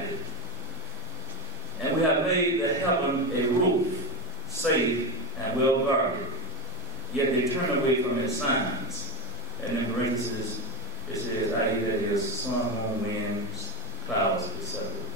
And we have made the heaven a roof, safe and well guarded. Yet they turn away from its signs. And in parentheses, it says, i.e. that is sun, moon, winds, clouds, etc.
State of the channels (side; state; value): both; normal; correlation 0.18